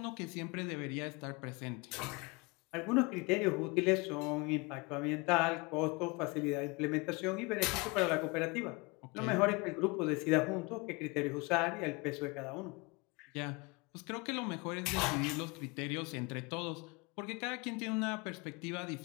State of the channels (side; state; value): right; quieter; 27.1 dB